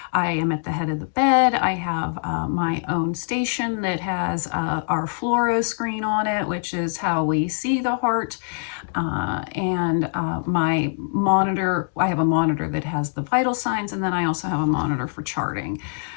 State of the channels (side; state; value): right; silent; digital silence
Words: I am at the head of the bed. I have my own station that has our fluoro screen on it, which is how we see the heart. My monitor, I have a monitor that has the vital signs, and then I also have a monitor for charting.